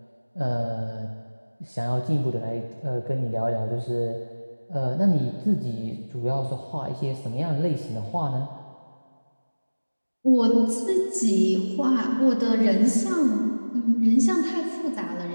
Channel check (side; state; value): both; inverted; correlation -1.00